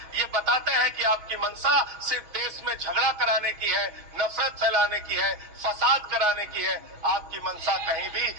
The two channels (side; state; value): left; late; 6.1 ms